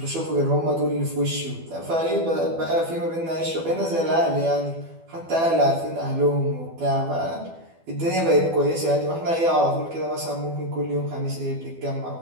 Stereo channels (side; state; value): left; late; 12 ms